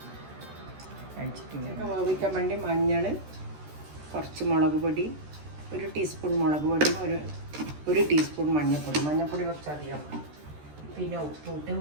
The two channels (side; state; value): left; late; 13 ms